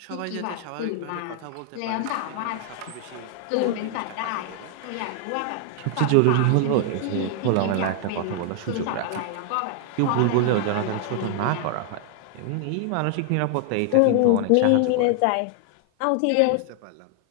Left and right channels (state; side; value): different; both; correlation 0.00